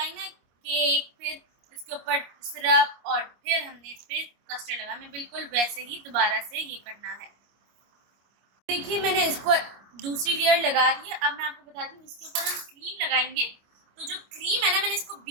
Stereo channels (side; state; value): left; late; 25 ms